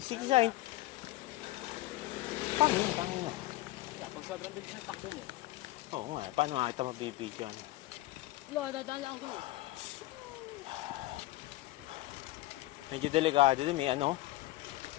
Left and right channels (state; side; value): quieter; right; 18.0 dB